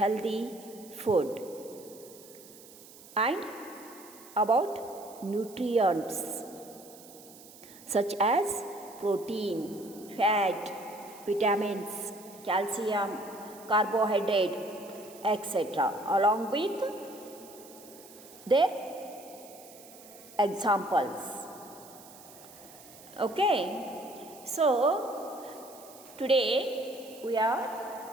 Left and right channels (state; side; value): noise; right; hiss, 20 dB below the sound